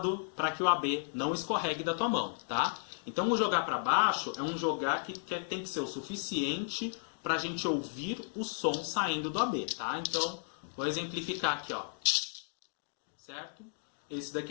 para que o AB não escorregue da tua mão, tá? Então, o jogar para baixo é um jogar que tem que ser o suficiente para a gente ouvir o som saindo do AB, tá? Então, vou exemplificar aqui, ó. Certo? Esse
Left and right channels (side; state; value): right; silent; digital silence